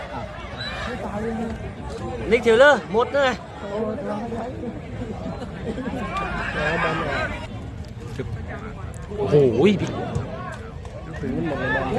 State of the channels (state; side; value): identical; both; correlation 1.00